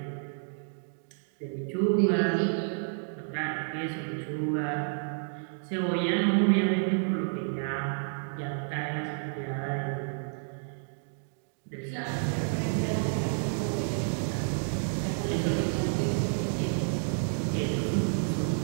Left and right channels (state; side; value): silent; left; digital silence